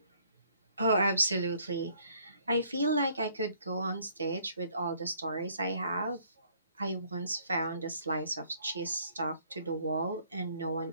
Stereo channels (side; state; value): both; inverted; correlation -0.63